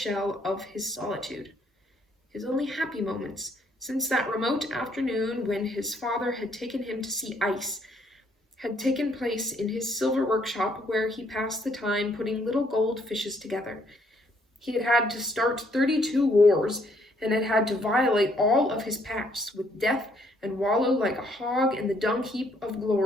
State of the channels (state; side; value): normal; both; correlation 0.68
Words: of his solitude. His only happy moments, since that remote afternoon when his father had taken him to see ice, had taken place in his silver workshop, where he passed the time putting little gold fishes together. He had had to start 32 wars, and had had to violate all of his pacts with death and wallow like a hog in the dung heap of